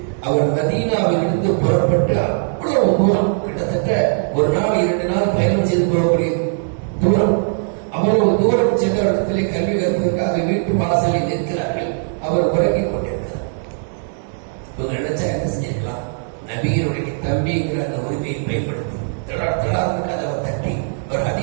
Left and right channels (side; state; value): left; silent; digital silence